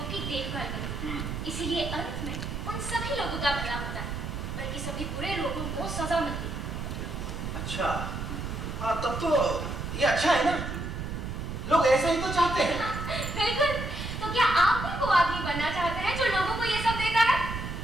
की देखभाल करती है। इसीलिए अंत में उन सभी लोगों का भला होता है, बल्कि सभी बुरे लोगों को सजा मिलती है। अच्छा, हाँ तब तो ये अच्छा है ना, लोग ऐसा ही तो चाहते हैं। बिल्कुल, तो क्या आप भी वो आदमी बनना चाहते हैं जो लोगों को ये सब देता है?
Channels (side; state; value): right; noise; rumble, 5 dB below the sound